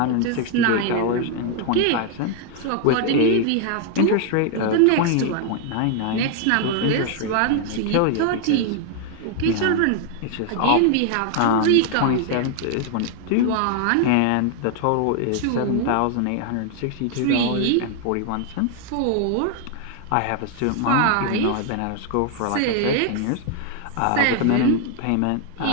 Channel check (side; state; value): both; different; correlation 0.00